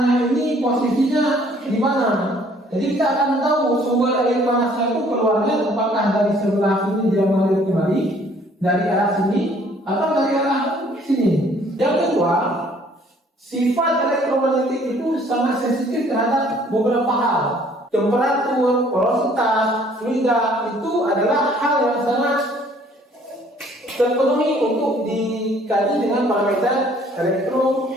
ini posisinya di mana. Jadi kita akan tahu sumber air panasnya itu keluarnya apakah dari sebelah sini dia mengalir kembali dari arah sini atau dari arah sini. Yang kedua, sifat elektromagnetik itu sangat sensitif terhadap beberapa hal. Temperatur, porositas, fluida itu adalah hal yang sangat terpenuhi untuk dikaji dengan parameter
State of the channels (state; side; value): normal; both; correlation 0.59